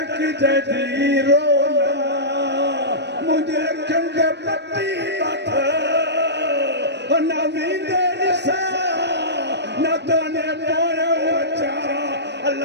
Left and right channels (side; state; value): left; late; 0.50 ms